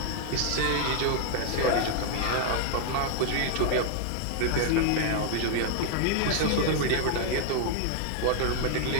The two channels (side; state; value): both; different; correlation 0.00